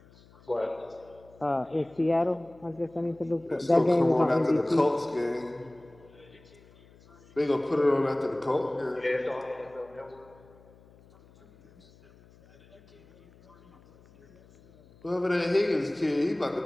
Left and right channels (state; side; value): noise; left; hum, 26 dB below the sound